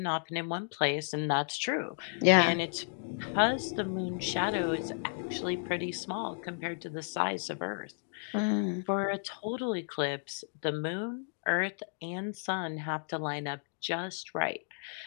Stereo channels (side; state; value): right; silent; digital silence